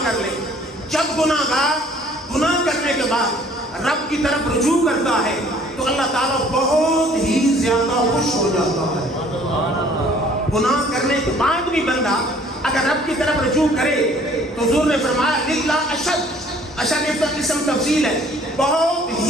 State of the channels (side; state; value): both; normal; correlation 0.56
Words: کر لے، جب گناہ گار گناہ کرنے کے بعد رب کی طرف رجوع کرتا ہے تو اللہ تعالیٰ بہت ہی زیادہ خوش ہو جاتا ہے۔ گناہ کرنے کے بعد بھی بندہ اگر رب کی طرف رجوع کرے تو حضور نے فرمایا للہ اشد، اشد اسم تفضیل ہے، بہت